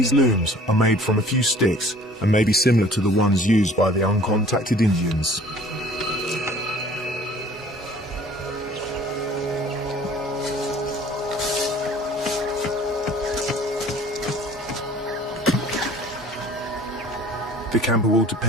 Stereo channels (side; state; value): both; normal; correlation 0.51